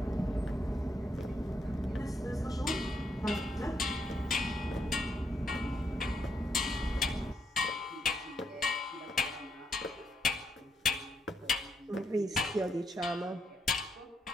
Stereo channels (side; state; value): both; normal; correlation 0.77